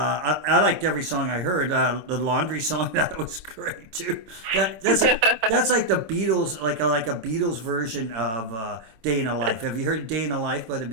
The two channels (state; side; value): late; left; 26 ms